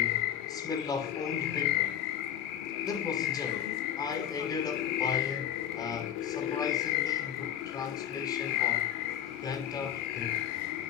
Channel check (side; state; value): right; quieter; 10.0 dB